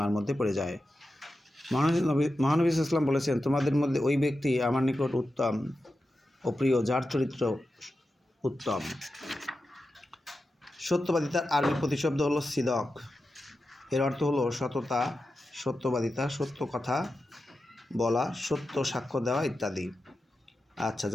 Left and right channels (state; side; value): normal; both; correlation 0.91